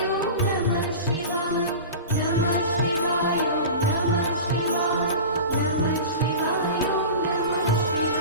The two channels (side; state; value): both; inverted; correlation -0.32